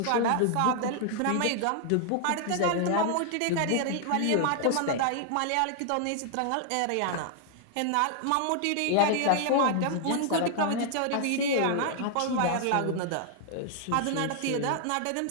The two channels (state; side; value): different; both; correlation 0.00